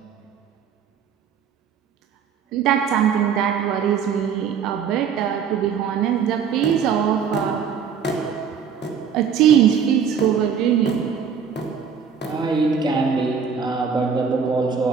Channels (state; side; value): quieter; left; 7.0 dB